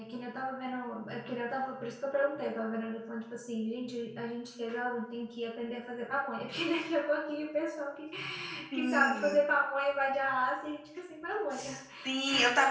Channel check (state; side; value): identical; both; correlation 1.00